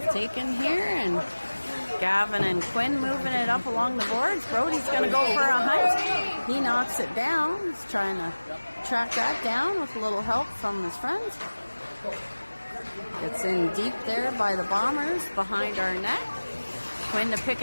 taken here, and Gavin and Quinn moving it up along the boards. Brody's going to go for a hunt. He knocks it down. He's trying to track that down with a little help from his friends. It's in deep there by the Bombers behind our net. Quinn to pick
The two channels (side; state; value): both; inverted; correlation -1.00